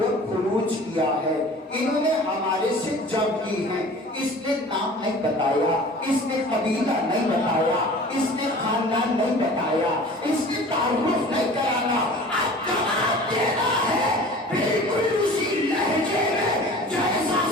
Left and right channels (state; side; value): normal; both; correlation 0.43